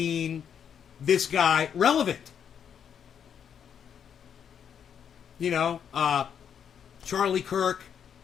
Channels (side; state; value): right; quieter; 8.1 dB